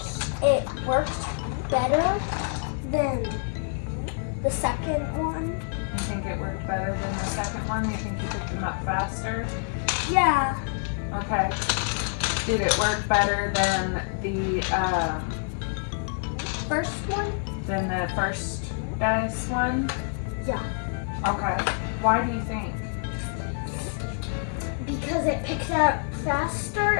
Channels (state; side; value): silent; right; 60 dB below the other